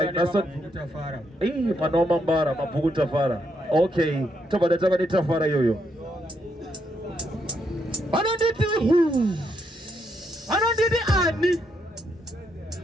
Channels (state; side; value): normal; both; correlation 0.77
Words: nasa mwana wa Mambara mabhuku tafara okay tobada taka ni tafara yoyo anonditi ani